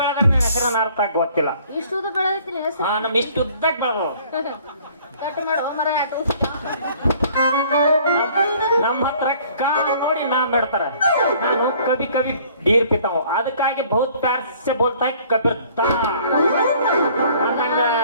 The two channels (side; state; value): both; inverted; correlation -0.56